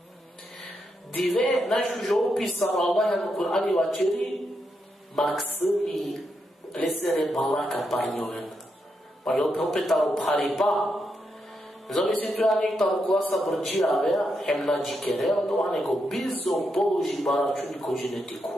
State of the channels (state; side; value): normal; both; correlation 0.83